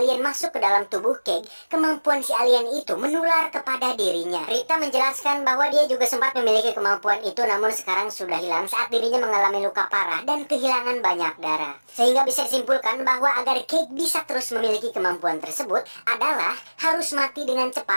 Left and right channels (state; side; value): inverted; both; correlation -1.00